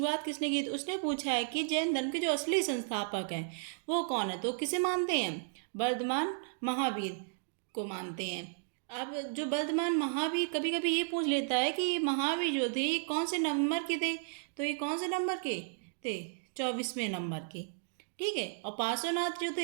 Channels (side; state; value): left; silent; digital silence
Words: किसने की थी। उसने पूछा है कि जैन धर्म के जो असली संस्थापक हैं वो कौन है। तो किसे मानते हैं? वर्धमान महावीर को मानते हैं। अब जो वर्धमान महावीर कभी कभी ये पूछ लेता है कि ये महावीर जो थे ये कौन से नंबर के थे। तो ये कौन से नंबर के थे? 24वें नंबर के। ठीक है। और पार्श्वनाथ जो